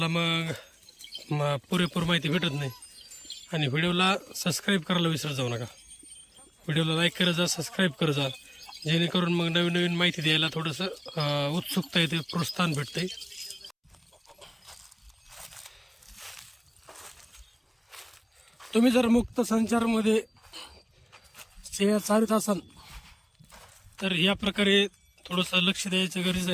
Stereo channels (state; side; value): identical; both; correlation 1.00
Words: मग पुरेपूर माहिती भेटत नाही. आणि व्हिडिओला सबस्क्राईब करायला विसरत जाऊ नका. व्हिडिओला लाईक करत जा, सबस्क्राईब करत जा, जेणेकरून मग नवीन नवीन माहिती द्यायला थोडंसं उत्सुकता येते, प्रोत्साहन भेटते. तुम्ही जर मुक्त संचारमध्ये सेवा चालत असाल तर या प्रकारे थोडंसं लक्ष द्यायचं गरजेचं